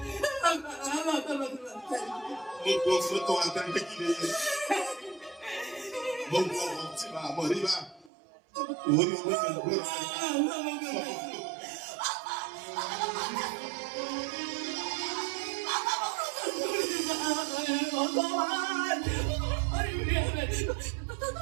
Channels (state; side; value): drops out; left; at 8.1 s